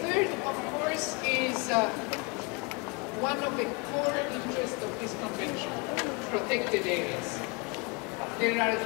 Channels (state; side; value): quieter; right; 28.8 dB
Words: of course, is one of the core interests of this convention, protected areas. There are